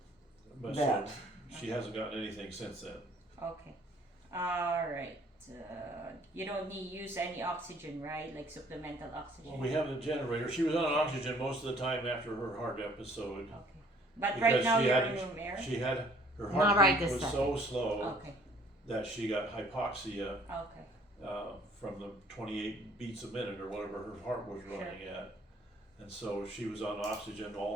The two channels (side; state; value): both; normal; correlation 0.58